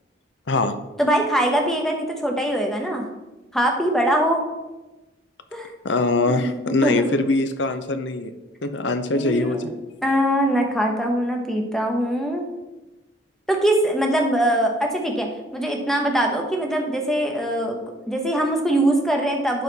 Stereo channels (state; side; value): normal; both; correlation 0.55